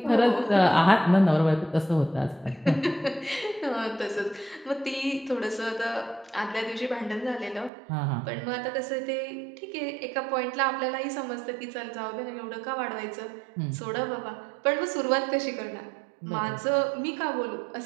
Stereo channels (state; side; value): drops out; left; at 7.7 s